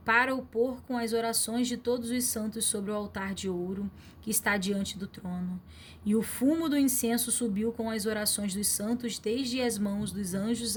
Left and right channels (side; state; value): both; identical; correlation 1.00